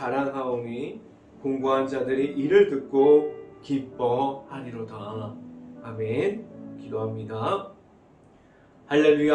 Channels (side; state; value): both; identical; correlation 1.00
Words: 공고한 자들이 이를 듣고 기뻐하리로다. 아멘. 기도합니다.